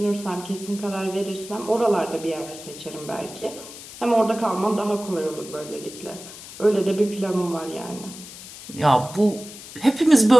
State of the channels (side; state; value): left; noise; hiss, 15 dB below the sound